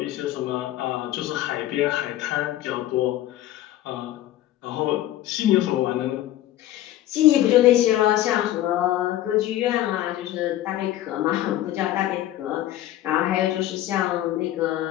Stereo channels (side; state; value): right; quieter; 13.9 dB